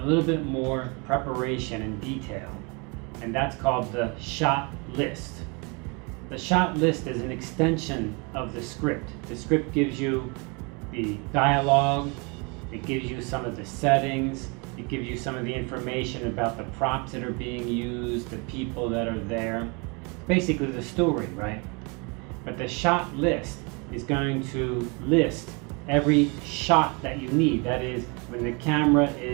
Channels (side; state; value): left; quieter; 31.2 dB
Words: little bit more preparation and detail, and that's called the shot list. The shot list is an extension of the script. The script gives you the dialogue, it gives you some of the settings, it gives you some of the information about the props that are being used, the people that are there, basically the story, right? But the shot list is going to list every shot that you need. That is, when the camera